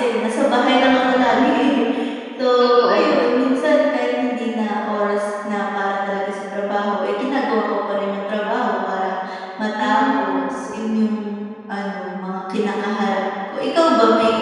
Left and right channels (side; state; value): both; identical; correlation 1.00